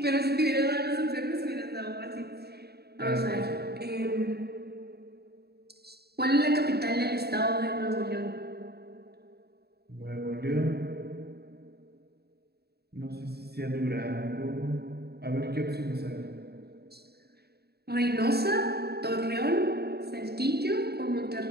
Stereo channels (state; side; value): late; left; 0.47 ms